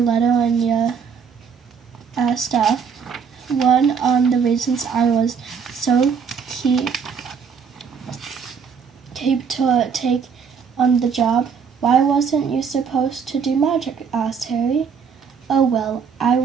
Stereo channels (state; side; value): quieter; left; 6.3 dB